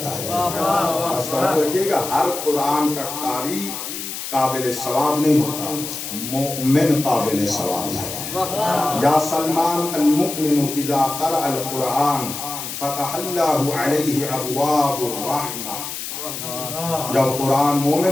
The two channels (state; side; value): noise; left; hiss, 7 dB below the sound